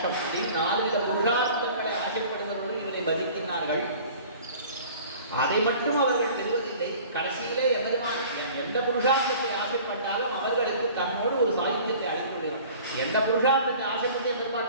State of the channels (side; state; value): both; inverted; correlation -0.46